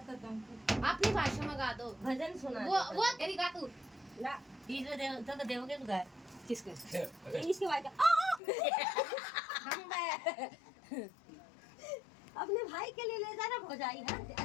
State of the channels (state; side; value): drops out; right; at 8.4 s